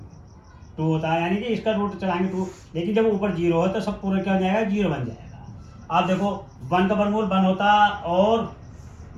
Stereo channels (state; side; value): identical; both; correlation 1.00